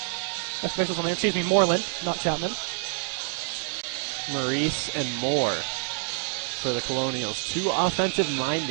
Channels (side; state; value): left; silent; 55 dB below the other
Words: officials on there. Excuse me, Moreland, not Chapman. Maurice and Moore for the Colonials. 2